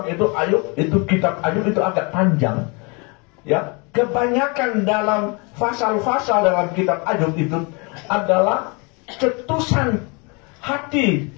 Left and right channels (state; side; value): quieter; right; 30.7 dB